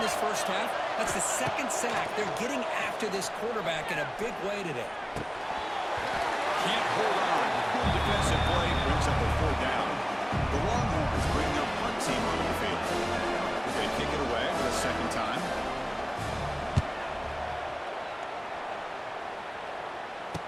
this first half, that's the second sack. They're getting after this quarterback in a big way today. Can't hold on. Good defensive play brings up a 4th down. The Longhorns bring their punt team onto the field. They kick it away for the second time.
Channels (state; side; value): identical; both; correlation 1.00